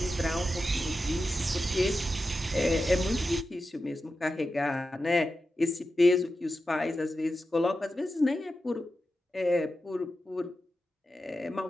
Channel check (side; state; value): both; normal; correlation 0.91